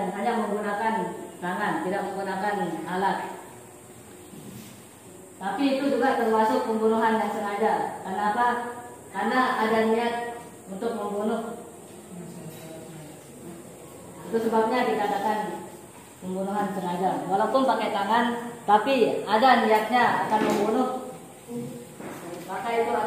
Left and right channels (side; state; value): both; identical; correlation 1.00